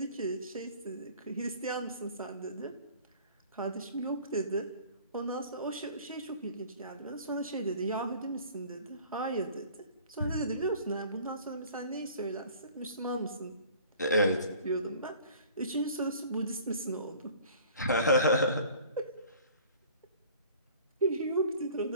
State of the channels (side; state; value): both; inverted; correlation -0.48